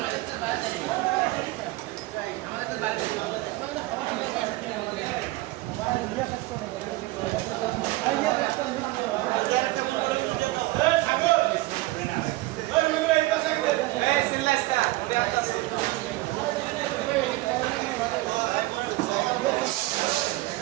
আমাদের তো বাইরে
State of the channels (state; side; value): quieter; left; 19.7 dB